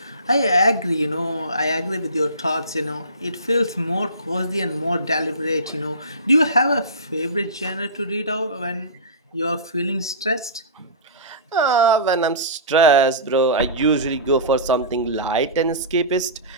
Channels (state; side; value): inverted; both; correlation -0.31